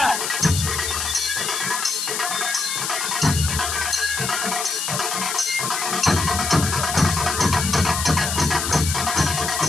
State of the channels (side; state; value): left; noise; hiss, 2 dB below the sound